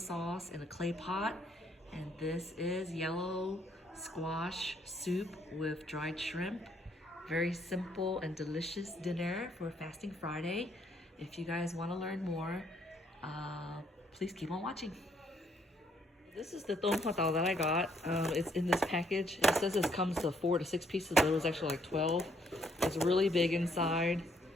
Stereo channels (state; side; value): normal; both; correlation 0.69